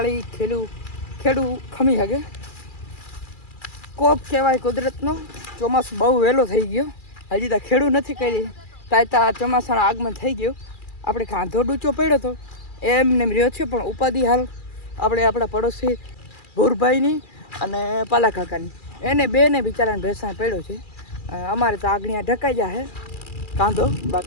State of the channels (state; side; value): late; right; 2.4 ms